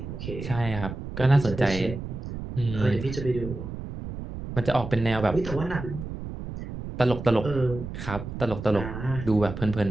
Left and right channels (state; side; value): noise; right; rumble, 8 dB below the sound